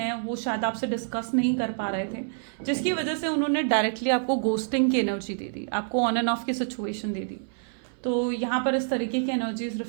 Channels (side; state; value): left; silent; 58 dB below the other